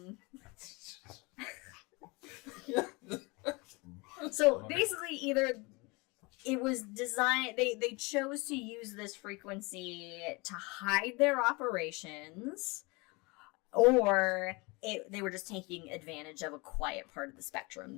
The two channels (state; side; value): quieter; right; 26.8 dB